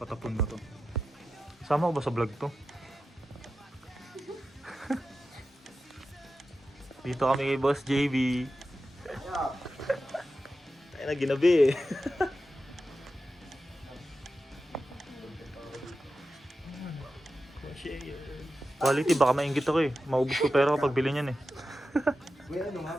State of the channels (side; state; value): both; normal; correlation 0.91